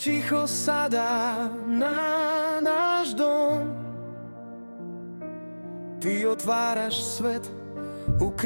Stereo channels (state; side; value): inverted; both; correlation -1.00